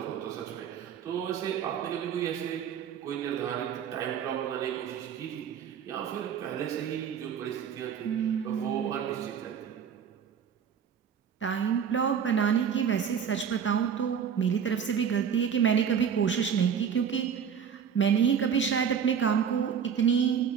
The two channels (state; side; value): quieter; left; 7.7 dB